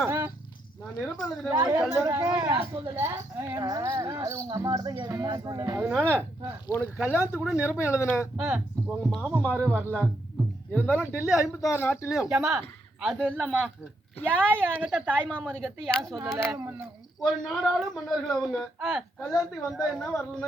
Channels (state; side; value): normal; both; correlation 0.78